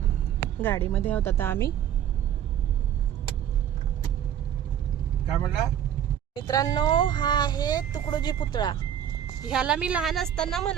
गाडीमध्ये आहोत आता आम्ही. काय म्हणला? मित्रांनो, हा आहे तुकडोजी पुतळा. ह्याला मी लहान असताना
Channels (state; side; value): quieter; left; 9.9 dB